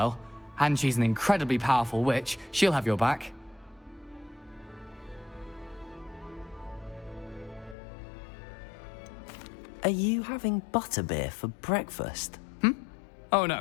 And she's an incredibly powerful witch. She'll have your back. Are you having butterbeer for breakfast? Oh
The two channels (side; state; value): right; drops out; at 7.8 s